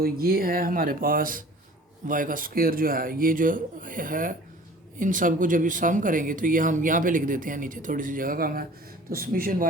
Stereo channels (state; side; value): normal; both; correlation 0.47